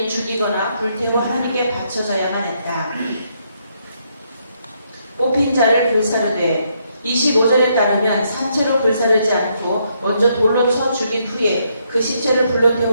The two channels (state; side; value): inverted; both; correlation -0.75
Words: 죽이거나 불태워 하나님께 바쳐져야만 했다. 뽑힌 자를 불사르되 25절에 따르면 산채로 불사르지 않고 먼저 돌로 쳐 죽인 후에 그 시체를 불러